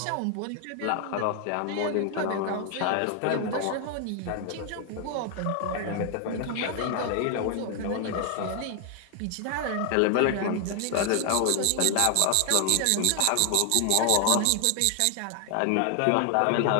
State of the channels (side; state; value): both; different; correlation 0.00